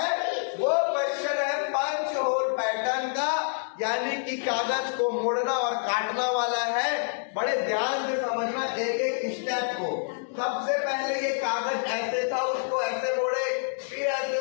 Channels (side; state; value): right; silent; digital silence